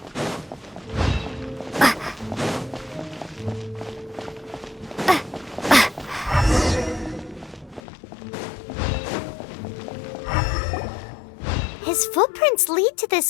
His footprints lead to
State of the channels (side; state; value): right; drops out; at 7.8 s